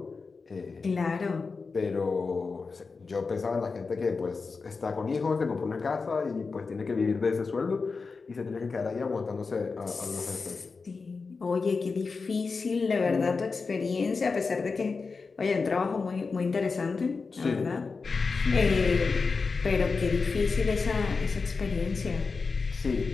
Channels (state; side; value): quieter; right; 4.5 dB